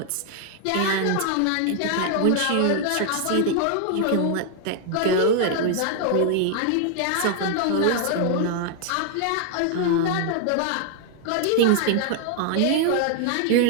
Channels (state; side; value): different; both; correlation 0.00